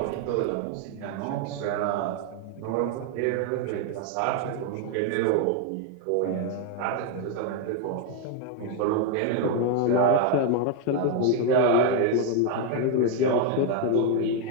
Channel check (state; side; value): different; both; correlation 0.01